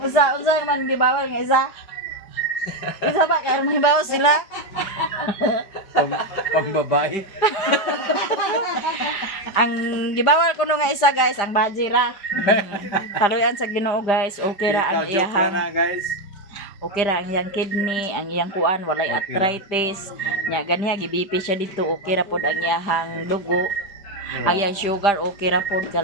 unsa man gibawal nga isa. Isa ba kay armang hibalo sila? Pambabae. Ang gibawal kuno nga isa guys ang bajira. Kaluyan sa Ginoo guys, okay ra ang Joke iyahang. na guys. Okay ra ang iyang kidney, ang iyang kuan, walay Okay ra. arthritis. Nya ganiha gibipi siya dito, okay ra pod ang iyang dugo. Ang iyang sugar okay ra pod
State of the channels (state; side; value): late; right; 5.0 ms